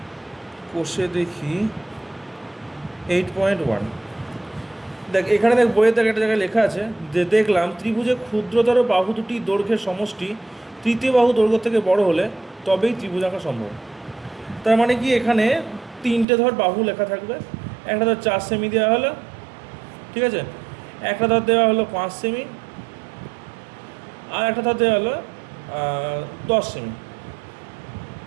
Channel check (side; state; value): left; drops out; at 16.2 s